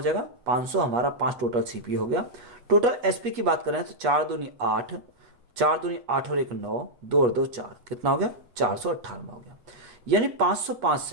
जाएगा, 500 हमारा 5 टोटल सीपी हो गया। टोटल एसपी की बात करें तो 4 दूनी 8, 4 दूनी 8 और 1 9, 2 और 2 4, कितना हो गया, 498 हो गया। यानी 505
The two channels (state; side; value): late; left; 8.3 ms